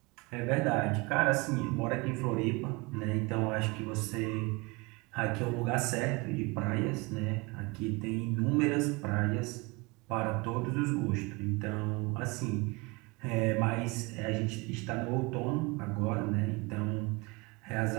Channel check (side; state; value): left; quieter; 26.2 dB